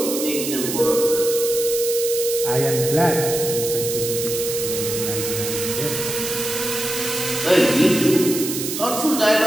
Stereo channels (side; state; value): right; noise; hiss, 5 dB below the sound